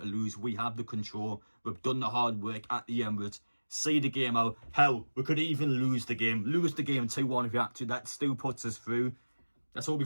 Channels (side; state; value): both; inverted; correlation -1.00